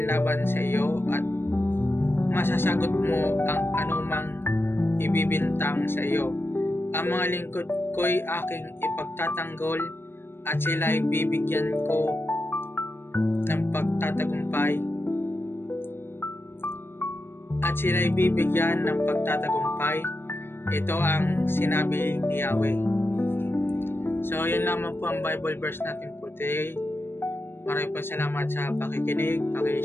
laban sa iyo at masasagot mo ang anumang ibibintang sa iyo. Ang mga lingkod ko'y aking ipagtatanggol at sila'y bibigyan ko ng pagtatagumpay. Ito ang sinabi ni Yahweh. So, yun lamang po ang Bible verse natin po today. Maraming po salamat sa pakikinig,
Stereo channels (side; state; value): right; late; 0.11 ms